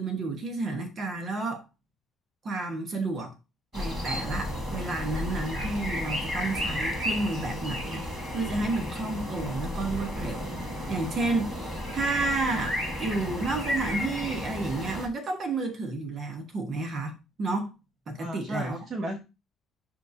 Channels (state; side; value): normal; both; correlation 0.69